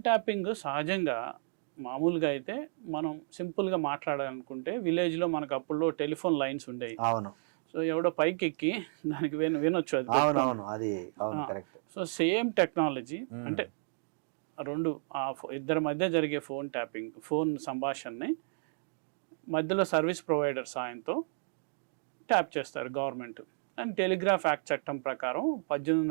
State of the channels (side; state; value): left; silent; digital silence